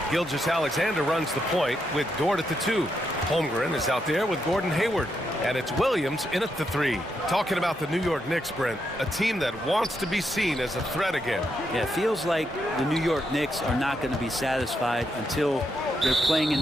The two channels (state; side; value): normal; both; correlation 0.81